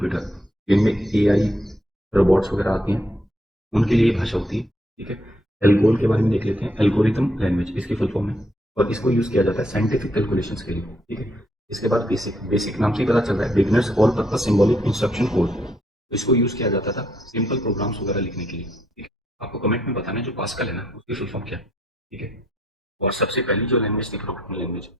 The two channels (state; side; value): normal; both; correlation 0.73